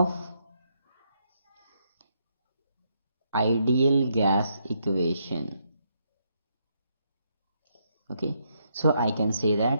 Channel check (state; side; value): inverted; both; correlation -0.76